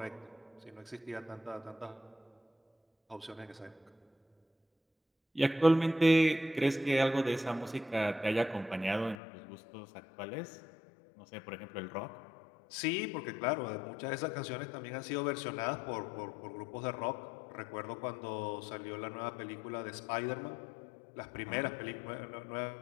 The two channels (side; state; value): right; drops out; at 9.2 s